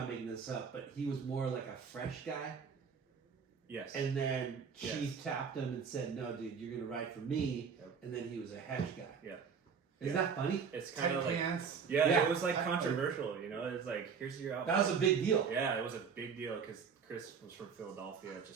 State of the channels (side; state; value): left; quieter; 6.3 dB